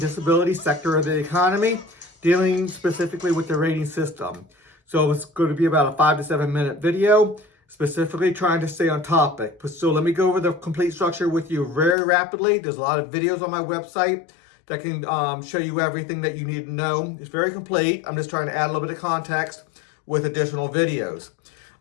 sector of the economy, dealing specifically with the rating system. So it's going to be about a 5 to 7 minute video, specifically trying to stay on topic. So let me go over the complete structure with you very rapidly. There's a lot of videos on my website that can show you everything that you need to know. It's very complete. I'm just trying to add a little bit of context with additional videos.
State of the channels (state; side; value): drops out; right; at 12.0 s